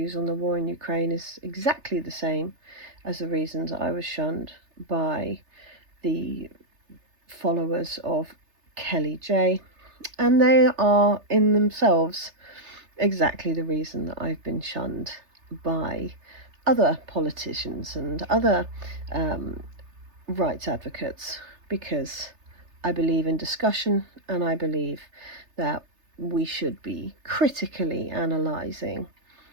on the war in Ukraine is exactly the same as the reasons I was shunned by the followers of Kelly J. And they are in themselves exactly the reason that I've been shunned by other politicians and other rights advocates, because I believe in discussion, and I believe that we should be critically analysing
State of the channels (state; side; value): late; left; 3.3 ms